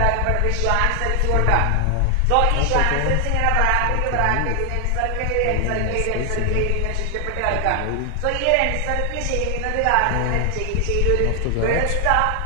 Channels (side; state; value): both; different; correlation 0.00